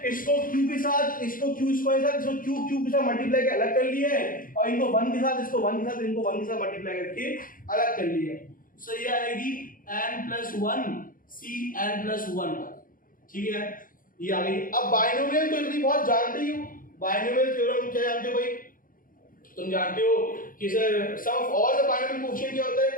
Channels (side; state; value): right; late; 0.40 ms